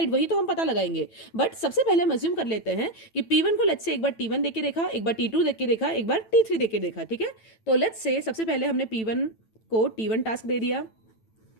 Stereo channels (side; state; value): right; late; 9.0 ms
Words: वही तो हम पता लगाएंगे। बट सबसे पहले हम अज्यूम कर लेते हैं कि P1 को लेट्स से एक बार T1 देख के देखा, एक बार T2 देख के देखा, एक बार T3 देख के देखा। ठीक है, तो लेट्स से सबसे पहले हमने P1 को T1 टास्क दे दिया।